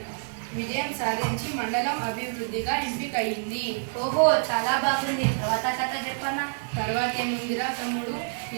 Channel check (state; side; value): silent; left; digital silence